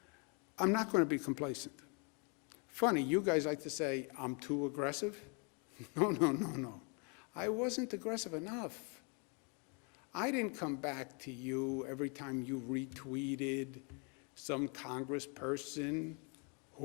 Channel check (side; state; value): right; quieter; 35.3 dB